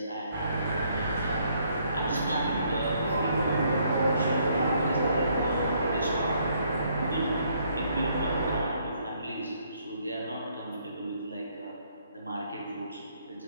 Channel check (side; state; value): both; inverted; correlation -0.68